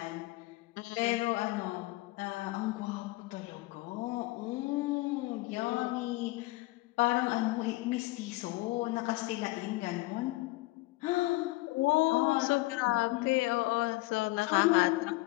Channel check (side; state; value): right; quieter; 20.7 dB